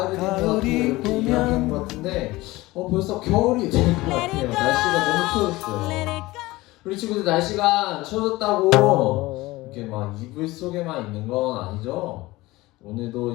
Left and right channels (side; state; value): right; quieter; 19.7 dB